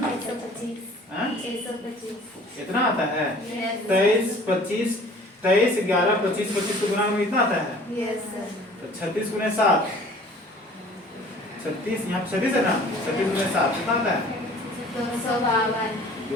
इतना आता है। 23 25 23 11 25 25 को गुणा में इतना आता है। तो 36 गुने 7, 36 यहाँ 36 है ना, 36 गुने 7 कितना आता है?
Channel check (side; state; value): both; normal; correlation 0.49